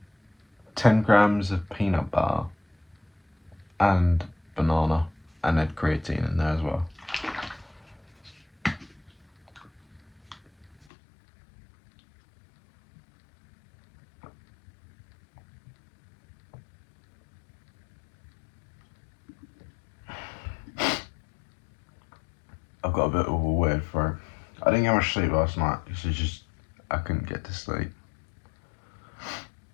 10 grams of peanut butter and banana, and then creatine in there as well. I've got a bit of a weird throat. I didn't get much sleep last night. I couldn't get to sleep.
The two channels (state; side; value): drops out; right; at 10.9 s